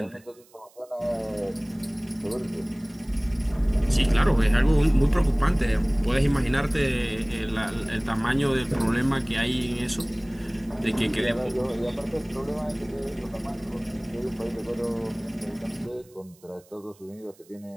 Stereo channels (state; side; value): noise; right; hiss, 29 dB below the sound